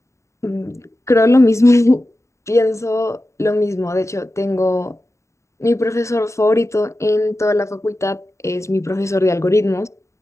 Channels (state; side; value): late; right; 0.14 ms